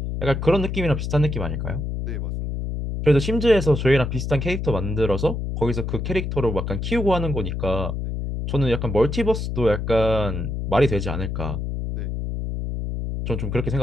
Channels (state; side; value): noise; left; hum, 3 dB below the sound